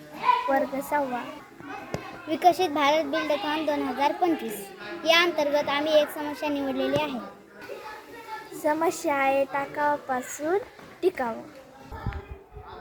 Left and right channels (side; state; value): both; identical; correlation 1.00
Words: वर्ग 6वा. विकसित भारत बिल्डथॉन 2025 या अंतर्गत आम्ही एक समस्या निवडलेली आहे. समस्या आहे टाकावापासून टिकाव.